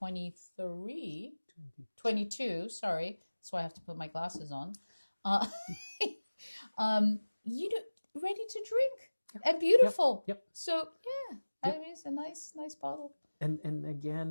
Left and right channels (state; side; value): inverted; both; correlation -1.00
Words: 22, sorry. That's why I have to put my glasses on. Uh, you know, ready to drink and beautiful. Yep. So yeah, I mean, it's a nice bottle. And